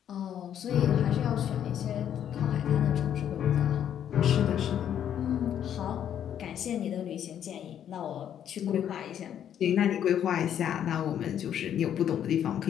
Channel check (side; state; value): right; quieter; 9.7 dB